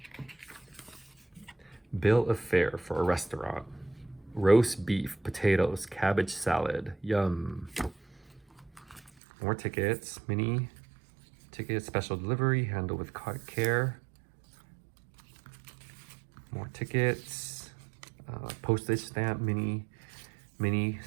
Bill of fare for a restaurant. Roast beef, potatoes, cabbage salad. Yum. More tickets. Mini tickets, special delivery, handle with care. More tickets. Postage stamp, mini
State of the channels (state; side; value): drops out; left; at 9.1 s